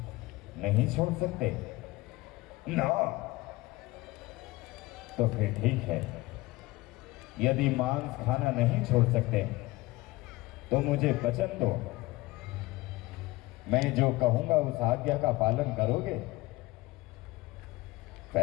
नहीं छोड़ सकते ना? तो फिर ठीक है, यदि मांस खाना नहीं छोड़ सकते तो मुझे वचन दो, मैं जो कहूंगा उस आज्ञा का पालन करोगे?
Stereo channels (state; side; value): quieter; right; 20.3 dB